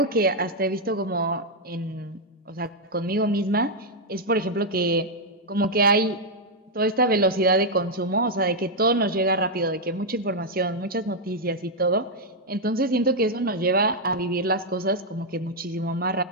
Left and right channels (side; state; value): both; normal; correlation -0.02